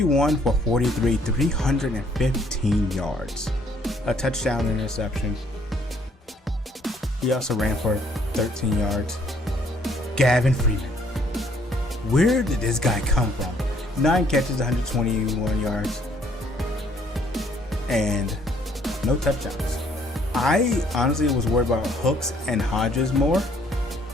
for 43, 315 yards. A touchdown, interception. He also ran for 13 yards. Gavin Freeman. Where did this guy come from? 9 catches, 121 yards. And no touchdowns. I honestly was worried about Hooks and Hodges more.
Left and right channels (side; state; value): both; normal; correlation 0.64